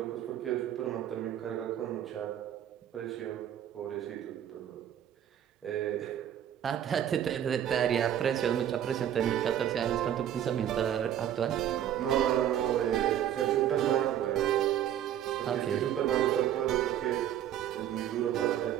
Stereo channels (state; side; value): quieter; left; 10.7 dB